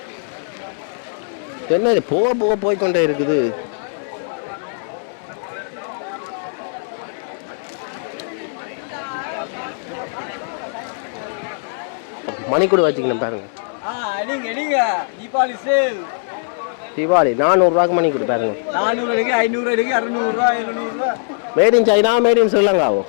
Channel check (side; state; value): right; silent; digital silence